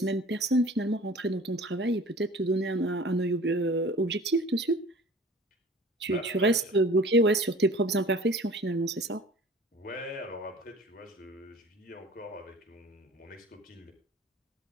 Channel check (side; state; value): both; normal; correlation 0.45